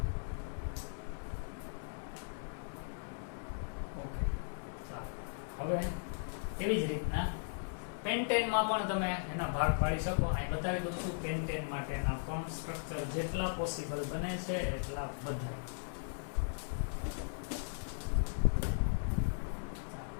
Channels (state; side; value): silent; right; 53 dB below the other